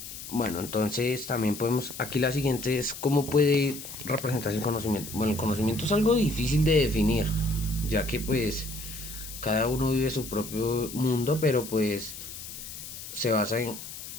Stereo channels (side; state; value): left; noise; hiss, 11 dB below the sound